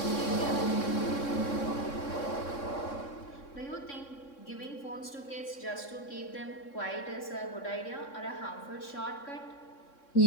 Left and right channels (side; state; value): right; late; 3.6 ms